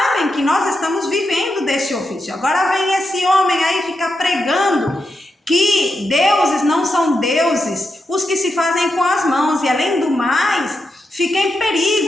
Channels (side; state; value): both; normal; correlation 0.86